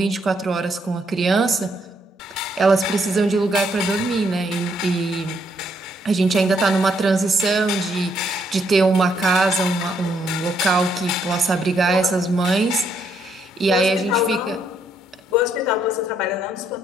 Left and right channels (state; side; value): normal; both; correlation 0.73